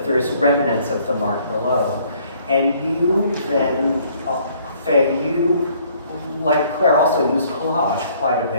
there is remnants of the mark below. And you then, Faye, you, like Claire, also use collage quite a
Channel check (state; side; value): inverted; both; correlation -0.61